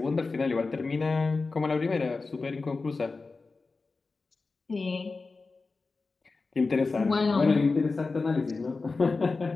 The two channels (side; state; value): right; quieter; 4.0 dB